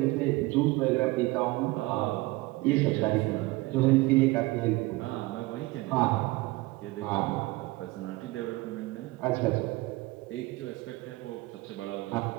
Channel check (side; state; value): left; quieter; 21.1 dB